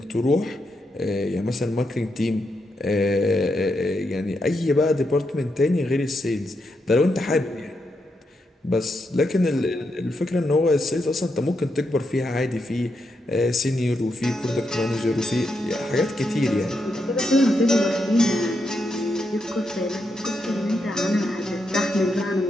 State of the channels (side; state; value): both; normal; correlation 0.83